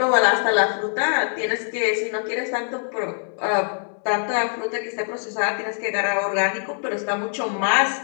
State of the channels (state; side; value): silent; right; digital silence